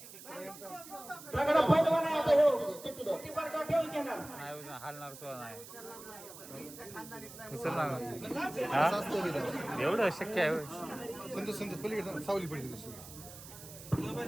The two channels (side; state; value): right; noise; hiss, 15 dB below the sound